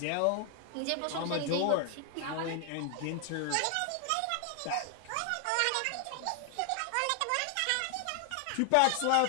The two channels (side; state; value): both; different; correlation 0.00